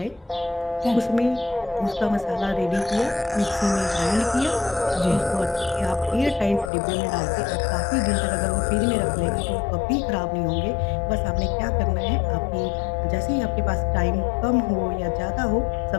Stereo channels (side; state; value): right; drops out; at 6.7 s